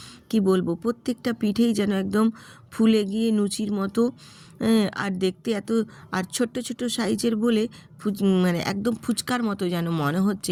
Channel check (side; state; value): both; identical; correlation 1.00